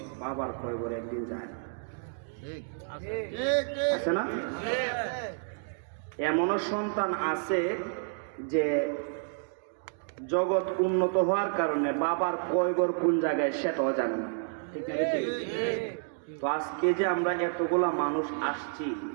বাবার কয়বরে একদিন যায় না, আছে না? এমনও সন্তান আছে যে জগৎ উন্নত হওয়ার কারণে বাবার কয়বর কোন জায়গায় সেটাও জানে না, ঠিক না? তো আজকে যে আমরা এতগুলা মানুষ আসছি,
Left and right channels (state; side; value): silent; left; digital silence